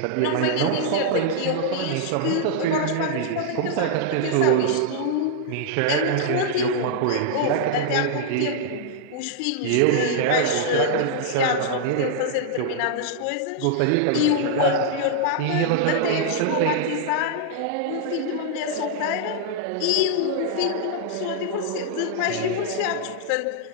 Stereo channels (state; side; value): different; both; correlation -0.01